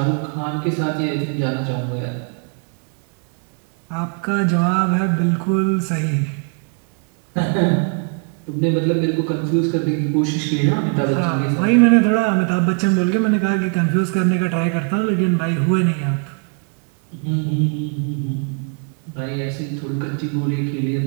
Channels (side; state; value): left; quieter; 38.5 dB